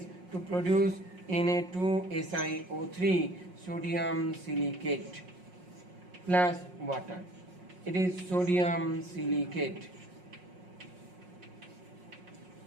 produce Na2SiO3, sodium silicate plus water. It is sodium silicate.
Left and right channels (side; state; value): left; late; 5.5 ms